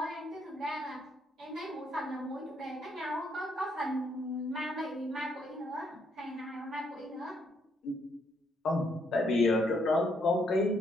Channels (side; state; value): both; normal; correlation 0.73